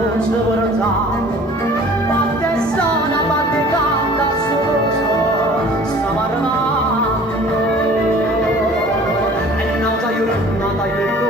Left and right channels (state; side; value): normal; both; correlation 0.48